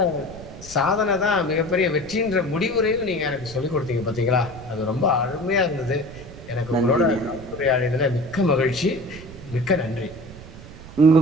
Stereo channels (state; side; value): noise; right; rumble, 15 dB below the sound